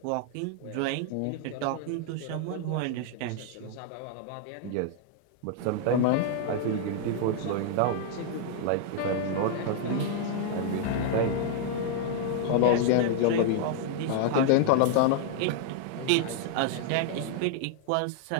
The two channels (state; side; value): different; both; correlation -0.01